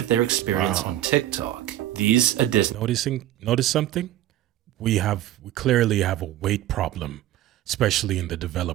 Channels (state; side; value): quieter; left; 13.5 dB